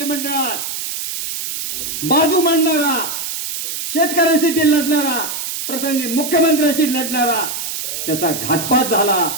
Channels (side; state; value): right; noise; hiss, 5 dB below the sound